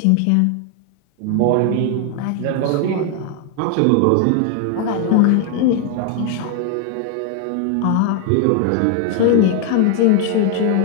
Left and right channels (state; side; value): different; both; correlation 0.00